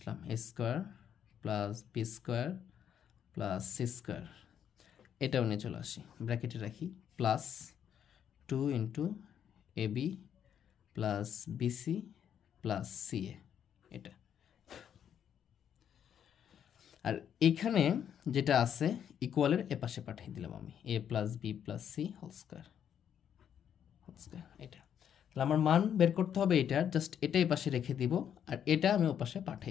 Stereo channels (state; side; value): quieter; right; 8.9 dB